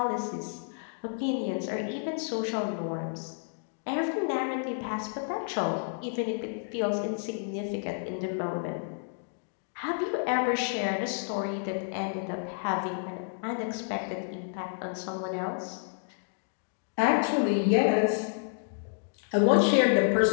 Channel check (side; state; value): right; silent; digital silence